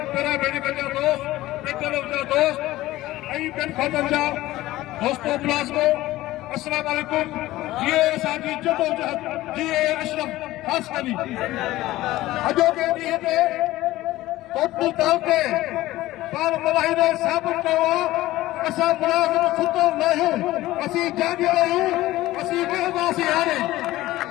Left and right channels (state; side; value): quieter; right; 16.7 dB